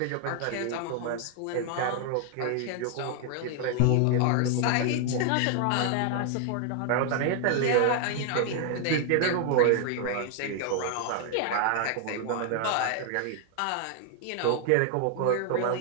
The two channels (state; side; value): different; both; correlation 0.00